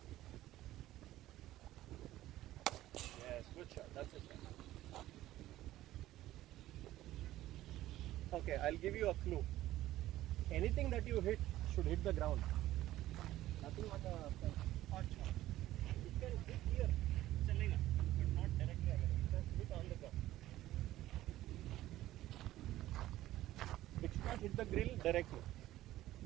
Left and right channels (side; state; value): left; quieter; 14.9 dB